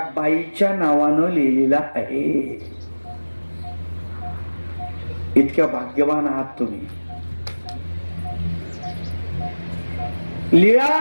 बाईच्या नावानं लिहिलेला आहे. इतक्या भाग्यवान आहात तुम्ही.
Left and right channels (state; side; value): inverted; both; correlation -1.00